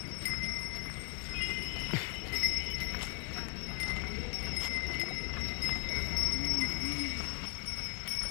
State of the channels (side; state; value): right; quieter; 32.0 dB